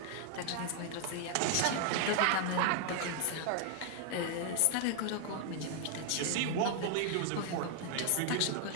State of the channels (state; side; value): different; both; correlation 0.00